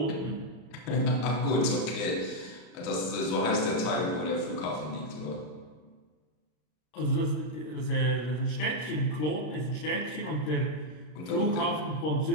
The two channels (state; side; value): late; right; 33 ms